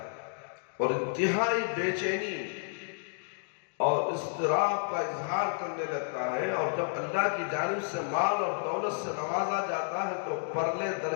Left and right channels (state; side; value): silent; right; digital silence